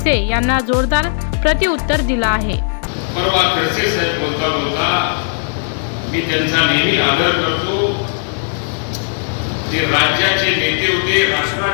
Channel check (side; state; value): right; silent; digital silence